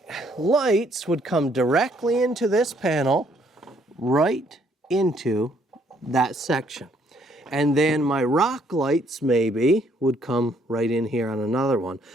lights would come directly into this panel, right into that section. And then my rock lights maybe would come right in here on another one.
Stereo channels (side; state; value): both; normal; correlation 0.67